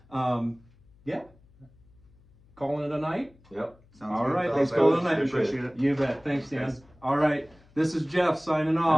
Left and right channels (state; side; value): noise; left; hum, 29 dB below the sound